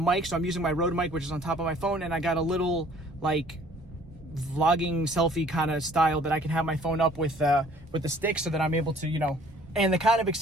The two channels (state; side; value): normal; both; correlation 0.55